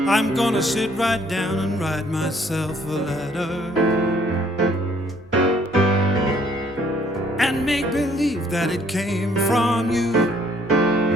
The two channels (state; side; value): normal; both; correlation 0.63